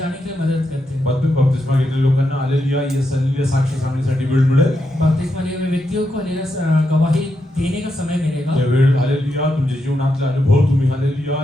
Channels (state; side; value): normal; both; correlation 0.84